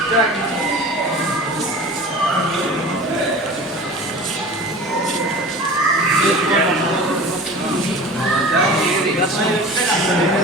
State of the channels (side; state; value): both; normal; correlation 0.38